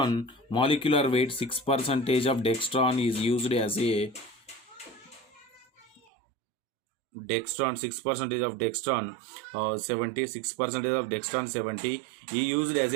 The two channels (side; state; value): left; drops out; at 6.0 s